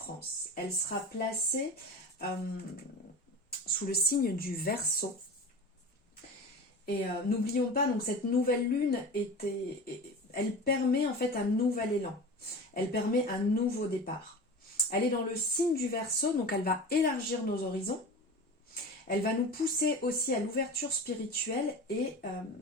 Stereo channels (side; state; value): both; normal; correlation 0.32